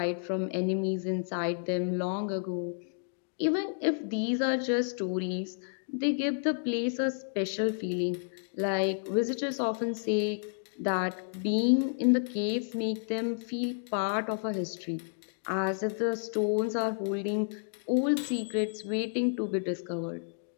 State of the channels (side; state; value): right; silent; digital silence